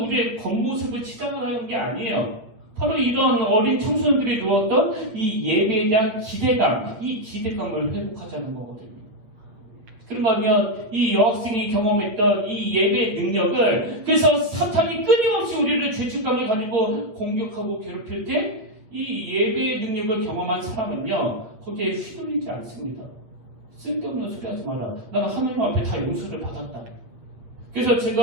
우리의 겉모습을 치장하는 게 아니에요. 바로 이런 어린 청소년들이 누웠던 이 예배에 대한 기대감, 이 기대감을 회복하자는 거거든요. 그런가 하면 이 여학생이 경험했던 이 예배의 능력을, 그래서 사탄이 끊임없이 우리를 죄책감을 가지고 공격하고 괴롭힐 때 이 예배의 능력을 경험한 사람은요, 거기에 휘둘리지 않습니다. 쓸데없는 소리 하지 마라. 나는 하나님 앞에 다 용서를 받았다. 그래서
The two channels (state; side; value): late; left; 8.9 ms